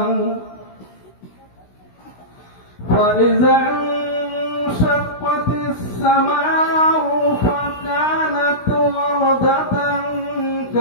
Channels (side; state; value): right; late; 16 ms